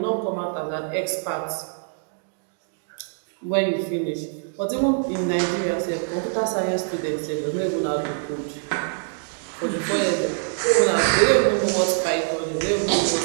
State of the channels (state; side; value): silent; left; digital silence